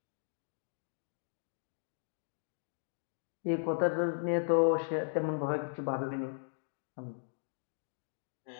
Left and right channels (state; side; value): silent; right; digital silence